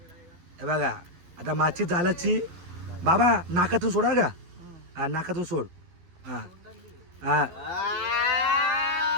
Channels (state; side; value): late; left; 12 ms